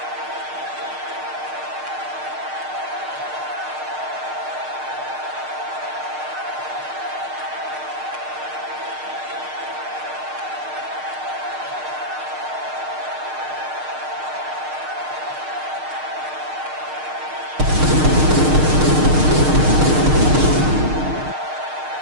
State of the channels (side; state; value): left; late; 6.5 ms